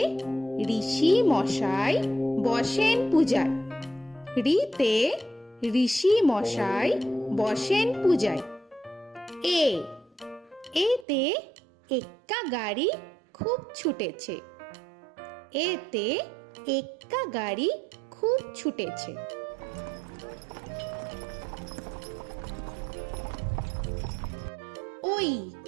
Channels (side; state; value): left; drops out; at 11.1 s